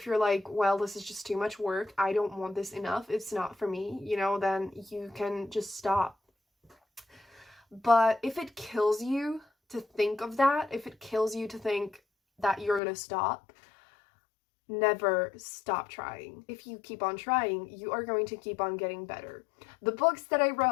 you're like, well, this is just too much work, I don't want this enough, it's not for me, you know, then you can just stop. But if it kills you to think of that, if it kills you to think that you're gonna stop, never stop trying. If you keep on trying, you are going to keep on getting better. The books that I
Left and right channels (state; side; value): drops out; right; at 12.8 s